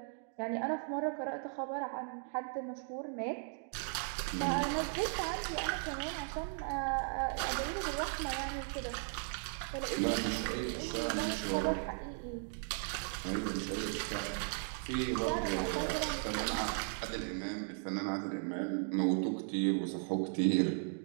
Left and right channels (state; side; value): silent; left; 53 dB below the other